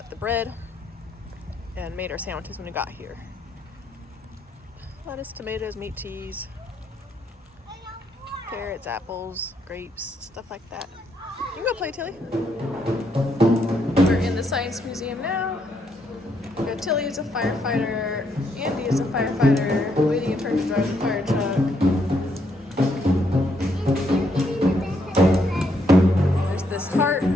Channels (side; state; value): both; normal; correlation 0.75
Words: the bread and made our sandwiches when we got here. Lettuce, tomatoes, meat, cheese, carrots, apples, grapes, stuff like that. You can go play, Tilly. the Science Museum now. We got Tilly is a firefighter, Andy is a firefighter, waiting a turn to drive the fire truck. There's this cart